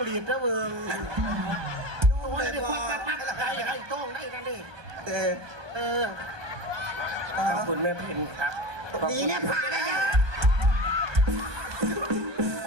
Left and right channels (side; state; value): left; late; 1.2 ms